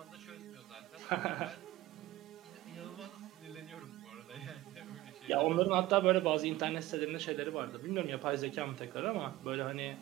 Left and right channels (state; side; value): quieter; left; 16.9 dB